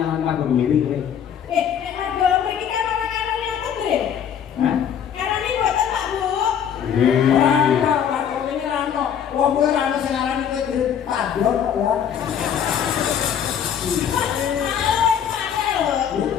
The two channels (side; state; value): right; quieter; 8.6 dB